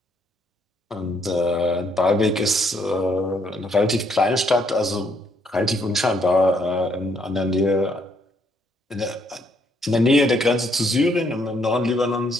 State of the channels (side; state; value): both; normal; correlation 0.71